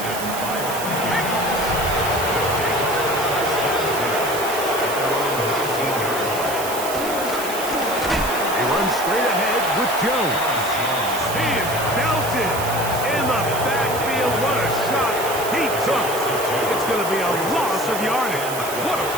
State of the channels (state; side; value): noise; right; hiss, 8 dB below the sound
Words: He runs straight ahead with Jones. He is belted in the backfield. What a shot he took. It's going to be a loss of yardage. What a